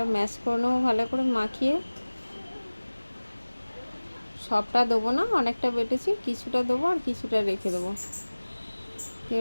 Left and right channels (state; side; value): inverted; both; correlation -1.00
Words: ম্যাশ করে নেবো ভালো করে মাখিয়ে। সবটা দেবো না, অনেকটা বেটেছি, কিছুটা দেবো আর কিছুটা রেখে দেবো।